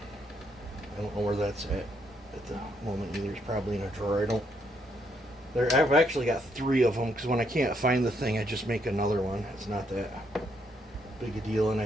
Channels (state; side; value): normal; both; correlation 0.74